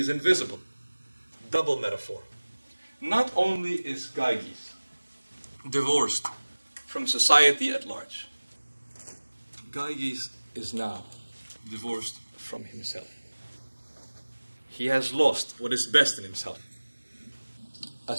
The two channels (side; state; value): both; inverted; correlation -1.00